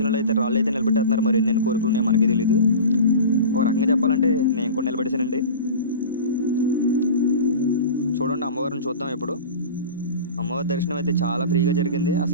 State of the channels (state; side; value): inverted; both; correlation -0.34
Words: అయితే రాళ్ళు అయితే నిలబెట్టేస్తున్నారు. మరి ఎన్నెన్ని కోరికలు ఉన్నాయో మనకే తెలీదు. ఒక రకంగా చెప్పాలంటే నేను కూడా నిలబెట్టేశానండి. చూడండి అమ్మవారిని చూద్దాం ఇప్పుడు. అమ్మవారి దర్శనం అయితే చాలా ఫ్రీగా జరిగింది.